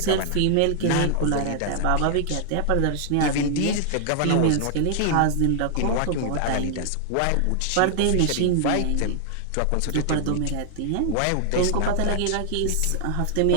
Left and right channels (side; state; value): both; different; correlation 0.00